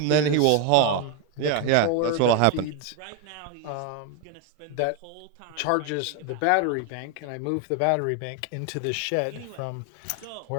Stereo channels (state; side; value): different; both; correlation 0.01